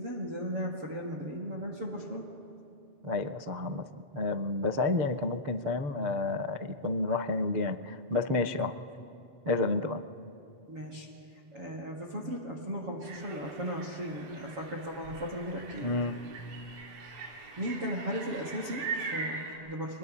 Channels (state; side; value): late; left; 7.4 ms